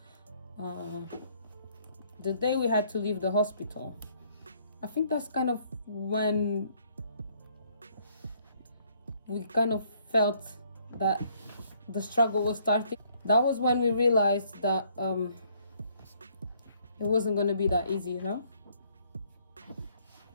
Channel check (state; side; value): inverted; both; correlation -0.65